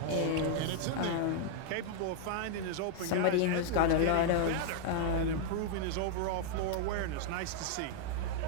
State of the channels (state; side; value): different; both; correlation -0.01